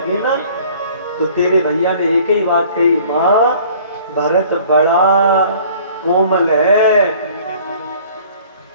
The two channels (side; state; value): both; inverted; correlation -0.52